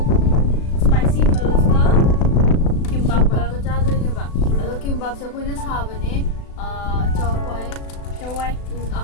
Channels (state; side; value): late; right; 36 ms